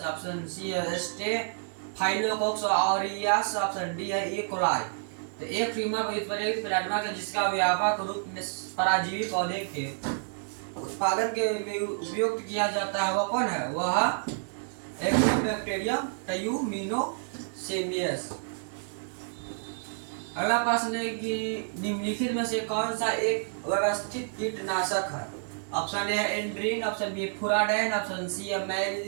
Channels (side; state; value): left; silent; digital silence